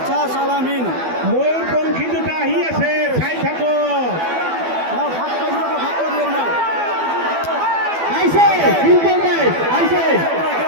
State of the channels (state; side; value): late; left; 12 ms